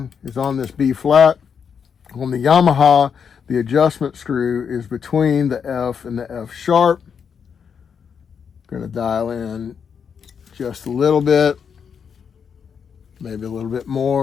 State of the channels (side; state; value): right; quieter; 6.9 dB